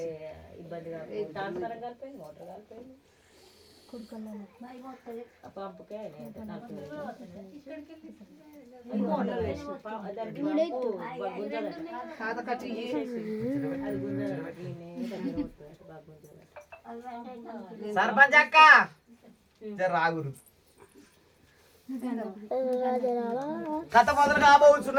సర్పంచ్ అక్క రాగురు కథ మొదలు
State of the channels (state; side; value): identical; both; correlation 1.00